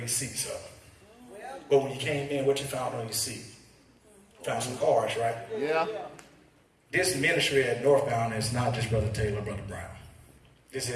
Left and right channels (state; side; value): identical; both; correlation 1.00